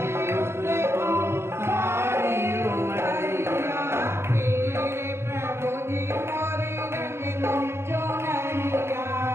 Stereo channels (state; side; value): late; left; 0.12 ms